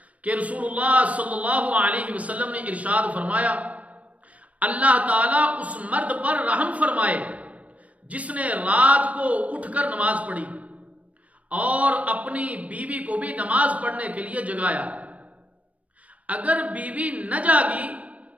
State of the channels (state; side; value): late; left; 0.066 ms